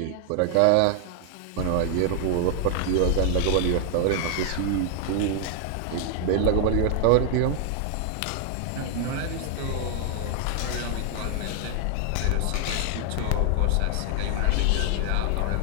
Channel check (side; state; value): both; different; correlation 0.00